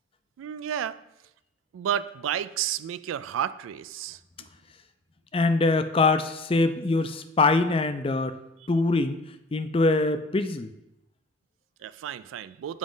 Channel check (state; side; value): normal; both; correlation 0.41